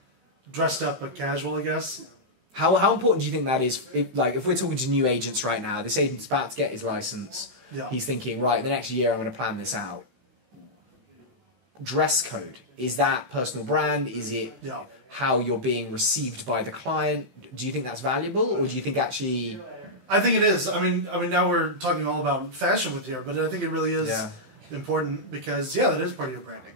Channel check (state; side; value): late; left; 16 ms